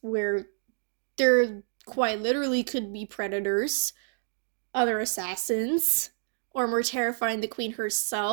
where there quite literally could be predators, other assassins, or more terrifying, the queen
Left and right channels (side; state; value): left; silent; digital silence